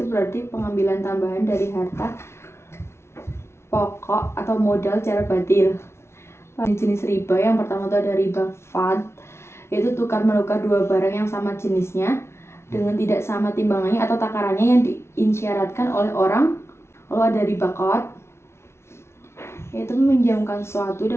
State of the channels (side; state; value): right; late; 0.13 ms